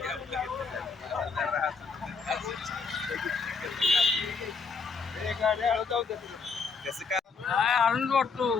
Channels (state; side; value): quieter; right; 5.0 dB